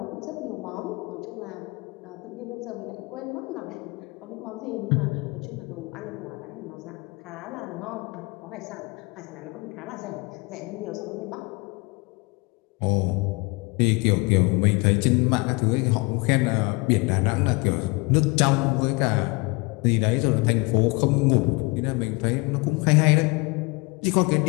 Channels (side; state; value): right; quieter; 27.1 dB